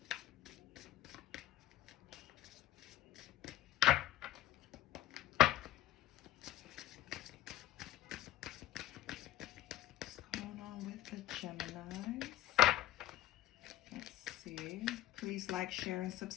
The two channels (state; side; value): quieter; right; 14.0 dB